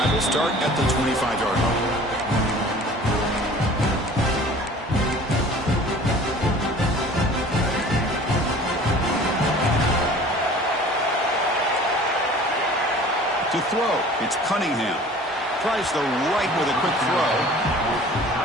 will start at the 25-yard line. To throw, it's Cunningham. Tries the right with a quick throw.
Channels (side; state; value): both; normal; correlation 0.46